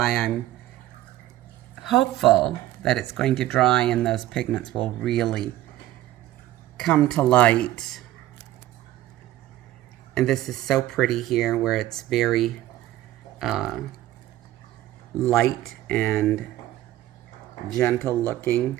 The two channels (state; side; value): quieter; left; 14.7 dB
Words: I'm hopeful that it's going to dry and those pigments will really come to light. And this is so pretty here where it's very light and gentle looking.